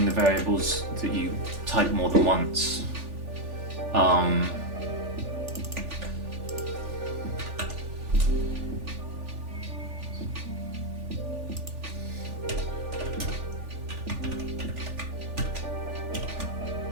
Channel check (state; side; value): late; left; 3.4 ms